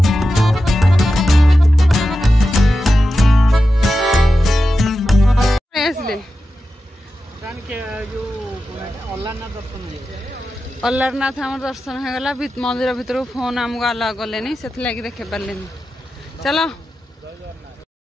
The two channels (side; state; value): both; normal; correlation 0.91